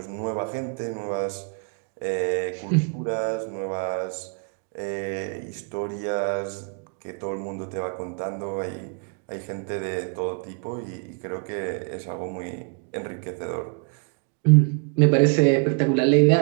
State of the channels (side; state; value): left; quieter; 37.2 dB